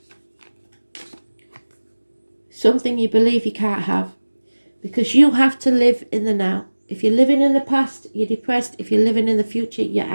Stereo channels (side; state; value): both; inverted; correlation -1.00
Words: Something you believe you can't have. Because you have to live in the now. If you're living in the past, you're depressed. If you're living in the future, you're